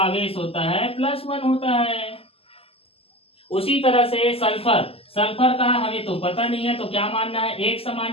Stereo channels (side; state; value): right; late; 0.28 ms